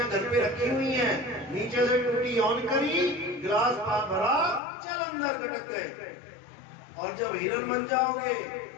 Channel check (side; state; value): right; drops out; at 4.6 s